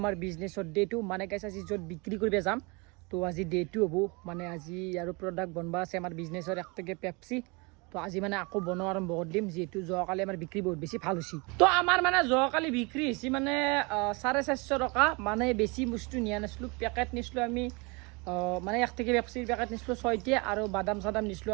বিজনেছৰ ডে টু মানে গাইস আজি য'ত বিক্ৰী কৰিব যাম তো আজি ডে টু হ'ব মানে আজি আৰু প্ৰডাক্ট বনবা আছে আমাৰ বিজনেছৰ একটকে পেপসি তো আজি মানে আকৌ বনোৱা আৰম্ভ কৰি দিম যেহেতু যোৱাকালি আমাৰ বিক্ৰী বহুত বেছি ভাল হৈছে তো আমাৰ মানে যোৱাকালি বিক্ৰী হৈছে মানে 450 টকা মানে বেছি বস্তু নিয়া নাছিলোঁ পেকেট নিছিলোঁ আমি মানে এক থেকে পেপসিৰ পেকেট নিছিলোঁ 6টা আৰু বাদাম চাদাম নিছিলোঁ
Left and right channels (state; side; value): quieter; left; 28.8 dB